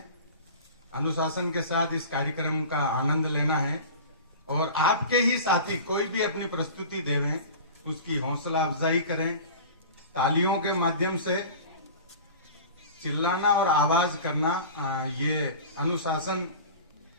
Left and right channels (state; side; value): inverted; both; correlation -0.36